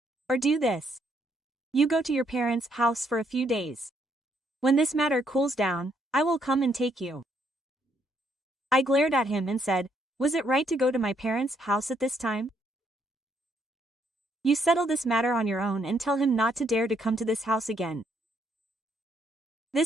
Or do this. You go to your parents' house for a few days. When this matter cools down, I will come and take you. I glared at him and said, was it right to go to my parents' house at this time? You settle this matter on your own and tell him not to dare to come to this house again.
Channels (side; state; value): both; normal; correlation 0.72